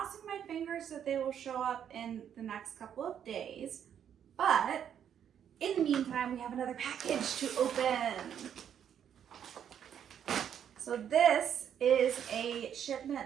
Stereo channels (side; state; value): left; quieter; 9.0 dB